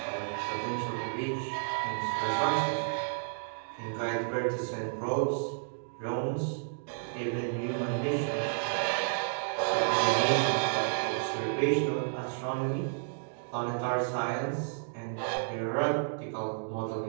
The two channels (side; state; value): left; silent; digital silence